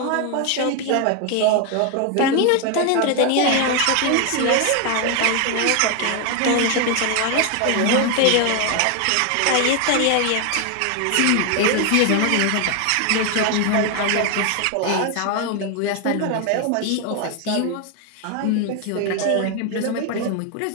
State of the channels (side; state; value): both; different; correlation 0.01